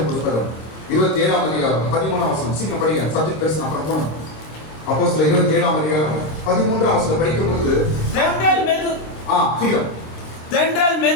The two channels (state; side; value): late; right; 26 ms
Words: புத்தகம் 27 அதிகாரம் 13 வசனம். சீக்கிரம் படிங்க, சப்ஜெக்ட் பேசணும் அப்புறம் போகணும். அப்போஸ்தலர் 27 அதிகாரம் 13 வசனம் படிக்கும் பொழுது தென்றல்